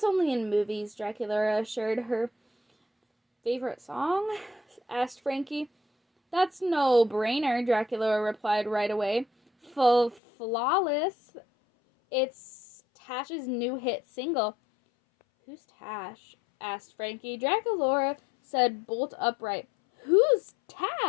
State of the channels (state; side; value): drops out; right; at 10.2 s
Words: only in movies, Dracula assured her. Favorite song? Asked Frankie. That's no brainer, Dracula replied right away. Flawless. It's Tash's new hit single. Who's Tash? Asked Frankie. Dracula said bolt upright. Who's